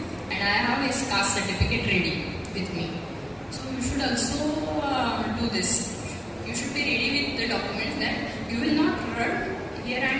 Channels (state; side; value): identical; both; correlation 1.00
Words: and I have his caste certificate ready with me. So you should also do this. You should be ready with the documents that you will not run here